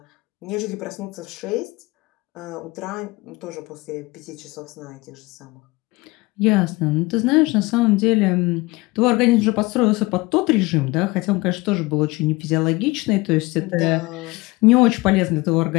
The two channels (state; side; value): quieter; right; 22.6 dB